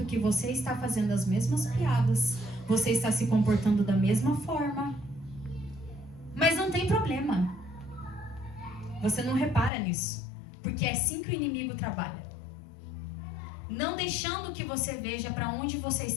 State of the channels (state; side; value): drops out; right; at 9.7 s